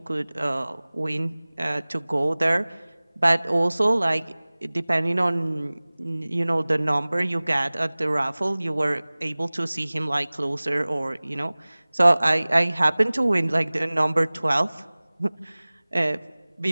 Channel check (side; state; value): both; inverted; correlation -1.00